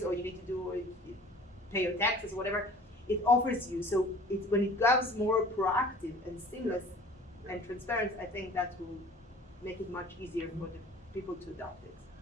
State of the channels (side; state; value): both; normal; correlation 0.47